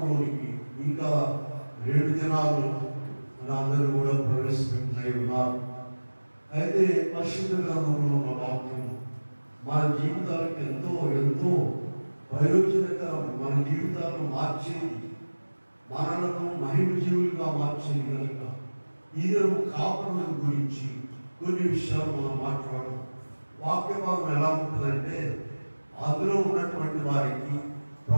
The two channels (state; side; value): inverted; both; correlation -1.00